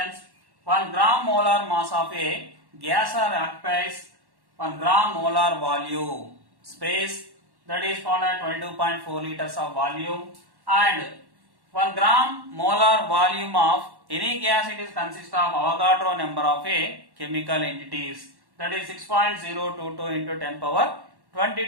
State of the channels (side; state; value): left; late; 1.1 ms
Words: 1 gram molar mass of a gas or occupies 1 gram molar volume space, that is called as 22.4 liters of volume, and 1 gram molar volume of any gas, it is consist of Avogadro number of a chemical entities, that is 6.022 into 10 power